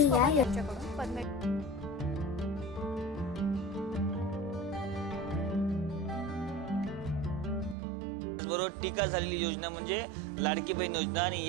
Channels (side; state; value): left; drops out; at 7.8 s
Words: या बरोबर टीका झालेली योजना म्हणजे लाडकी बहीण योजना आणि